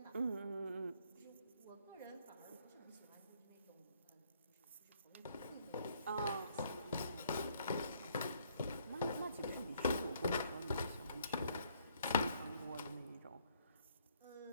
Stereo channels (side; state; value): both; inverted; correlation -0.66